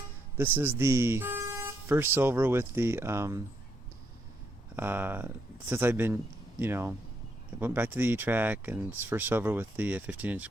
This is the first silver with the, since I've been, I went back to the E-trac, and it's first silver with the 15-inch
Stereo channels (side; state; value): both; normal; correlation 0.77